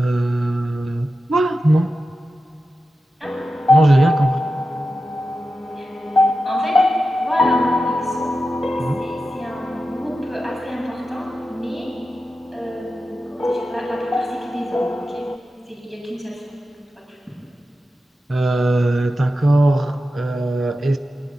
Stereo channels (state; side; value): normal; both; correlation 0.92